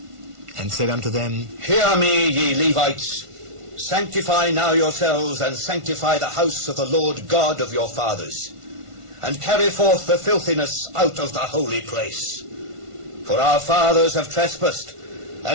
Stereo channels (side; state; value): left; late; 1.5 ms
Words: and said unto them, Hear me, ye Levites. Sanctify now yourselves, and sanctify the house of the Lord God of your fathers, and carry forth the filthiness out of the holy place. For our fathers have trespassed,